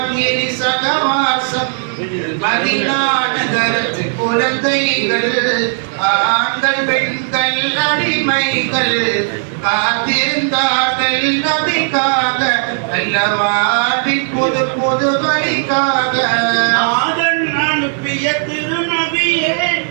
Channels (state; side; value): silent; left; 58 dB below the other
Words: இனி சகவாசம். மதீனா நகரத்து குழந்தைகள், ஆண்கள் பெண்கள் அடிமைகள் காத்திருந்தார்கள் நபிக்காக, நல்ல வாழ்வின் புது புது வழிக்காக. நாதன் அனுப்பிய திருநபியே,